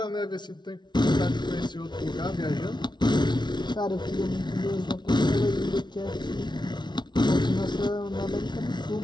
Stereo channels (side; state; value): right; late; 0.21 ms